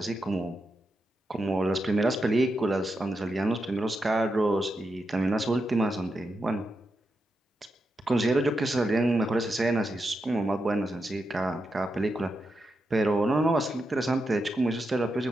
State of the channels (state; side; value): normal; both; correlation 0.86